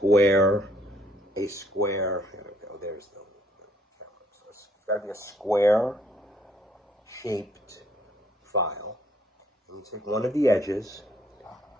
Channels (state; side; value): normal; both; correlation 0.65